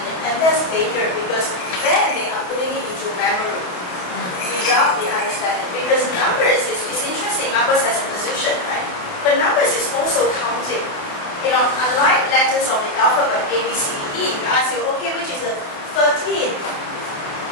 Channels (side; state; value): right; late; 28 ms